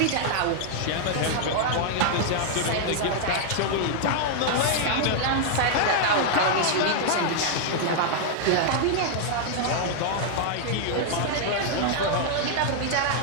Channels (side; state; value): both; different; correlation -0.01